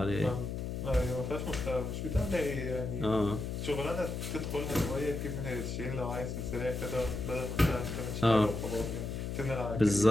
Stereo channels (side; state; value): left; noise; hum, 4 dB below the sound